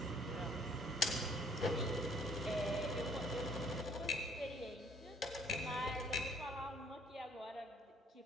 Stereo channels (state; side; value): normal; both; correlation 0.59